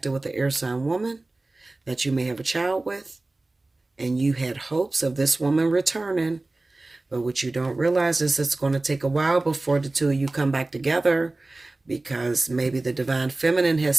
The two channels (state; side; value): quieter; left; 3.0 dB